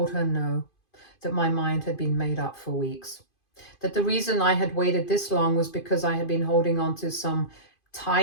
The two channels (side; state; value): right; late; 2.5 ms